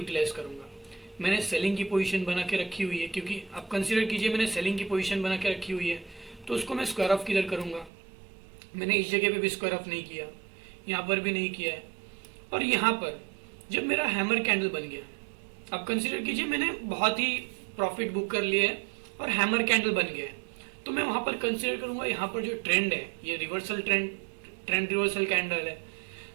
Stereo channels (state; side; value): drops out; left; at 7.9 s